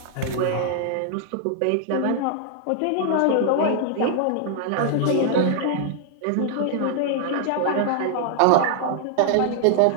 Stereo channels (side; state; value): both; different; correlation -0.01